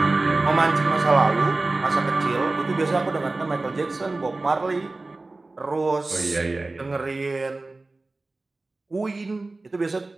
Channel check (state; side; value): quieter; left; 3.3 dB